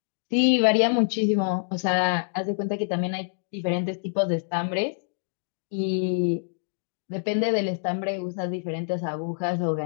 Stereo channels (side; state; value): right; silent; digital silence